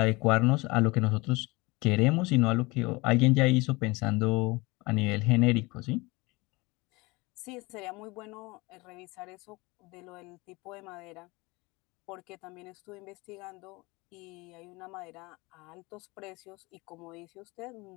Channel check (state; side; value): quieter; right; 24.2 dB